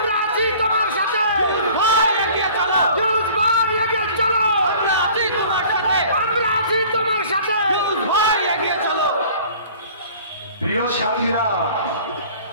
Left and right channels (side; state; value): both; inverted; correlation -0.49